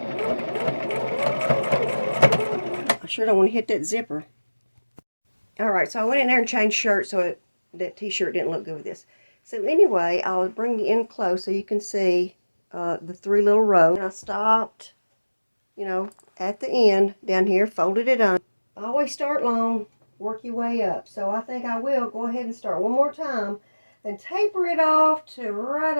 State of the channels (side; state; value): both; inverted; correlation -1.00